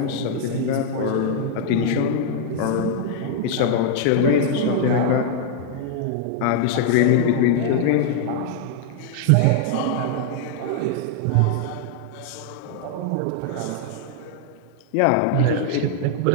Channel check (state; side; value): different; both; correlation -0.01